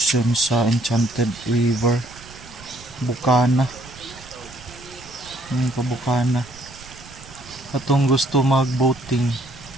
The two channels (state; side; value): noise; right; rumble, 20 dB below the sound